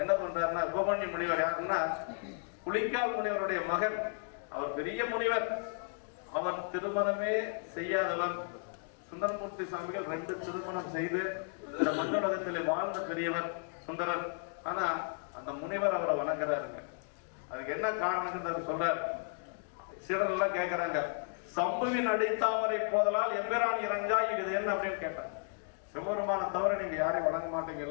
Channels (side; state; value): right; silent; 55 dB below the other